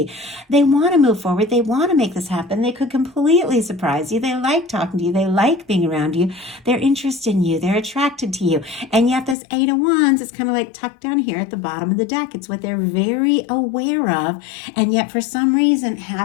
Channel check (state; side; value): drops out; right; at 9.3 s